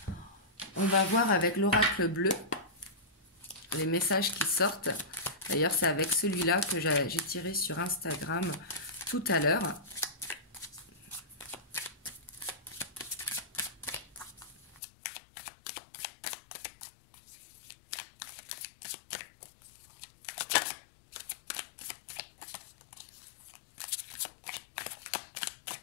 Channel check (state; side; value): drops out; right; at 14.8 s